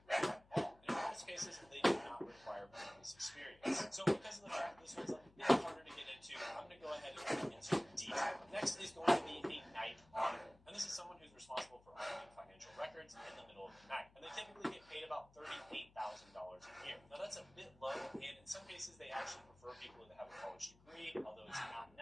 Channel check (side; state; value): left; noise; hum, 26 dB below the sound